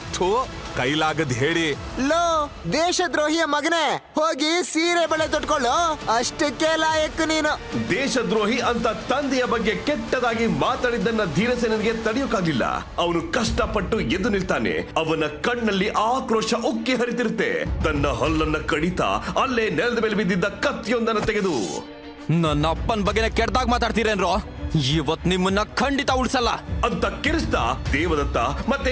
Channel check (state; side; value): identical; both; correlation 1.00